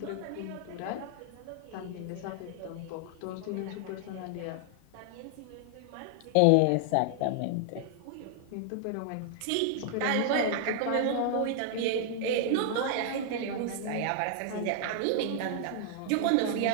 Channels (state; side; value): different; both; correlation 0.00